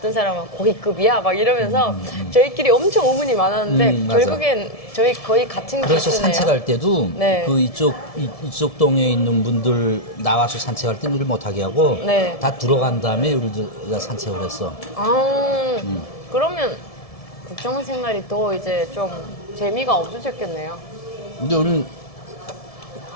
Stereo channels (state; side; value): late; right; 1.7 ms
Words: 사람은 고위급이야 막 이러면서 저희끼리 엄청 의문이 많았는데 맞아. 결국엔 저희 거의 같은 그래서 기수네요. 산책할 때도 네. 그 이쪽 동에 있는 분들 나와서 산책할 때 우리를 못하게 하고 네. 다 들어간 다음에 우리가 산책을 했어. 그러면 국정원 생활이 더 이제 좀 재미가 없어졌겠네요. 근데 우리는